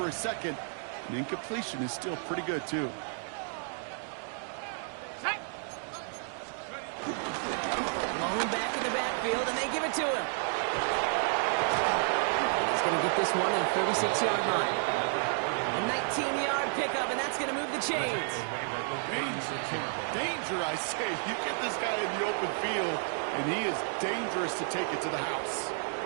a second. And incompletion is still pretty good, too. Back in the backfield, and they give it to him. He's going to get this one at the 36-yard line. A 19-yard pickup, and that's going to move the chains. Danger, I say. You get this guy in the open field, and he is dangerous to take it to the house.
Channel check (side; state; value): left; silent; 57 dB below the other